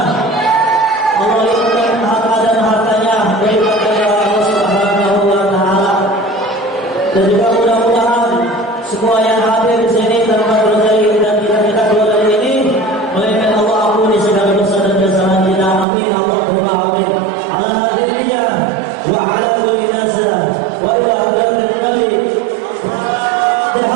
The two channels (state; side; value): drops out; left; at 15.9 s